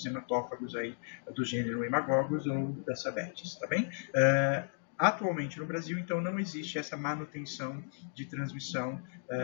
hematófagos aí do gênero Hemagogos ou da Sabetes, tá bem? Atualmente no Brasil, então, não existe essa manutenção de transmissão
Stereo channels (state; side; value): silent; right; digital silence